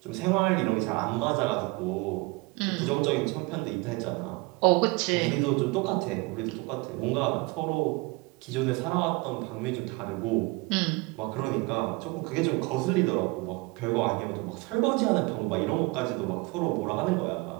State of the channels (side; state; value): left; quieter; 25.8 dB